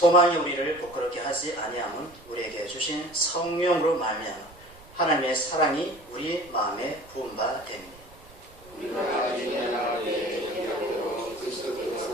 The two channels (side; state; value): right; noise; rumble, 23 dB below the sound